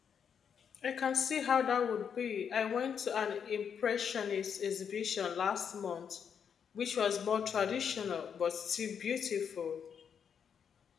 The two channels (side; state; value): right; quieter; 7.4 dB